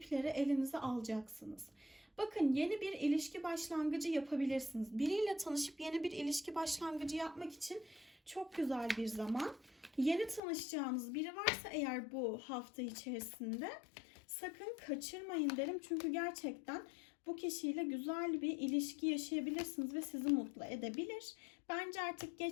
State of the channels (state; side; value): drops out; right; at 10.4 s